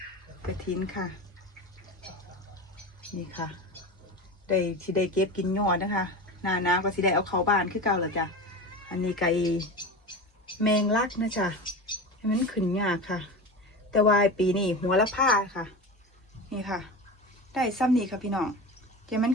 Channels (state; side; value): normal; both; correlation 0.27